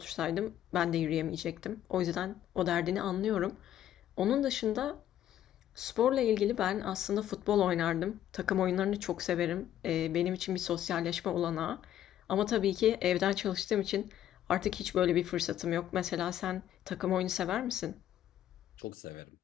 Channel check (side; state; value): right; quieter; 11.5 dB